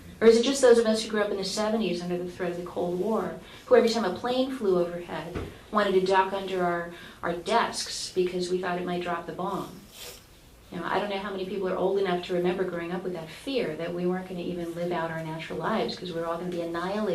Or is it just those of us who grew up in the 70s under the threat of the Cold War, who every time a plane flew overhead wanted to duck under our desks because we thought it might drop the bomb? You know, I don't know how many people are old enough to remember growing up with that fear that we weren't going to even live out our natural lives because we were all going to be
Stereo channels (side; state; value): both; identical; correlation 1.00